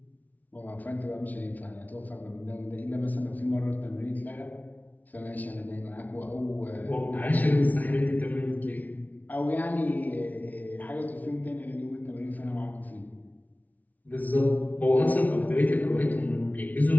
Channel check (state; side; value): late; right; 0.076 ms